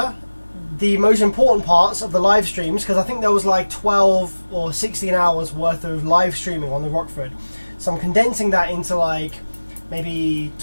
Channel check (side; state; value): both; inverted; correlation -1.00